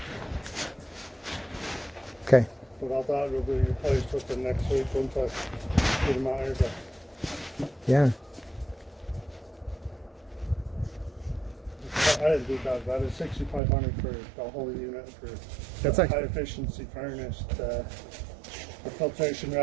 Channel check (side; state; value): left; drops out; at 13.6 s